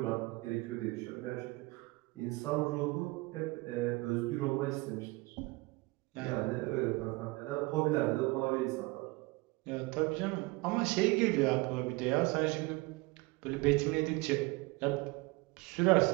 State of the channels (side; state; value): left; quieter; 24.2 dB